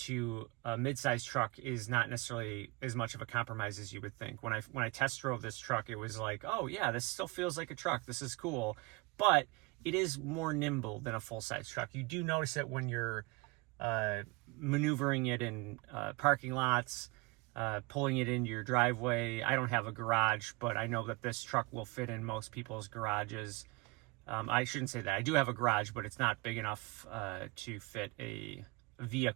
a mid-size truck is not necessarily as much of a compromise as you would think. When I test drove this truck, it was like, oh yeah, this still feels like a truck. This is cool, but it is more nimble than a full-size truck. You do notice it when you're maneuvering it in parking lots, pulling it into your driveway. I don't have a garage, but I know that this truck will fit in most people's garages. I shouldn't say that. I do have a garage, but it's not big enough to fit a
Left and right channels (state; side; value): quieter; left; 25.6 dB